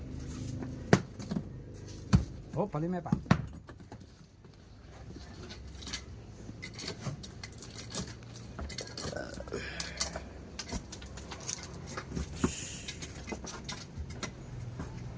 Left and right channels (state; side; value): identical; both; correlation 1.00